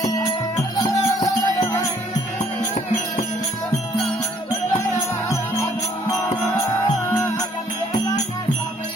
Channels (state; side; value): normal; both; correlation 0.63